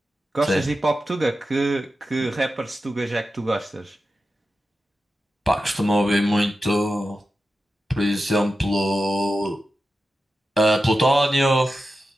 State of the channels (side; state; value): both; normal; correlation 0.91